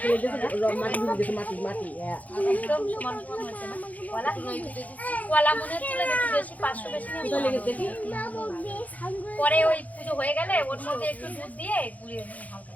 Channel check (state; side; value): late; right; 0.075 ms